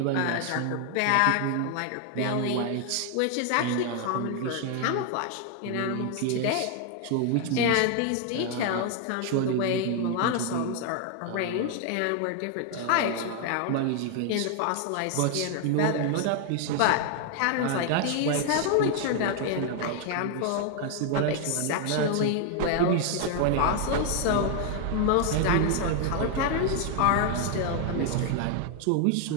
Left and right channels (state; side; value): different; both; correlation 0.00